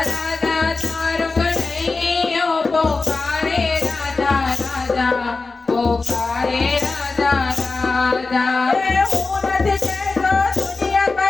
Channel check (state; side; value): quieter; right; 3.9 dB